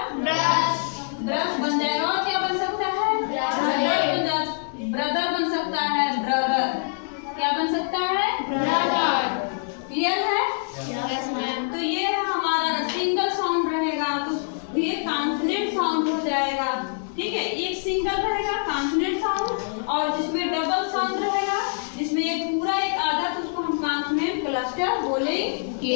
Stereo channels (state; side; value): silent; right; 61 dB below the other